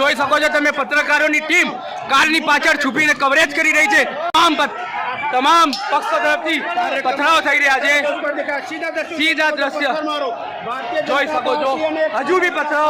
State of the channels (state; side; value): identical; both; correlation 1.00